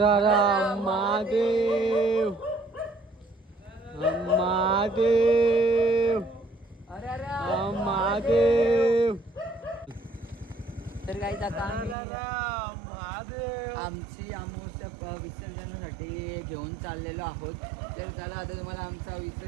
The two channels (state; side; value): drops out; left; at 12.0 s